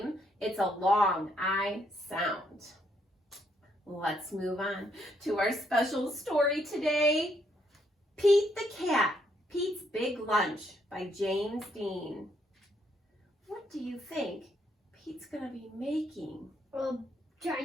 it's a long I sound. Let's move on to our special story today. Pete the Cat, Pete's Big Lunch by James Dean. What do you think Pete's going to be making? A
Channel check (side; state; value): both; normal; correlation 0.73